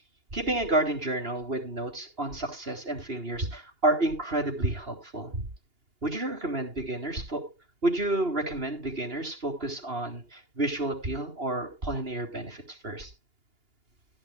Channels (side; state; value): left; late; 2.8 ms